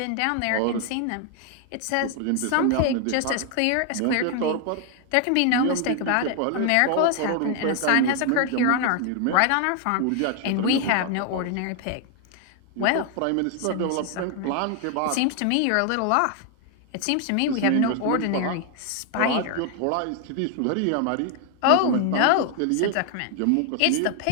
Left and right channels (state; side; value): different; both; correlation 0.00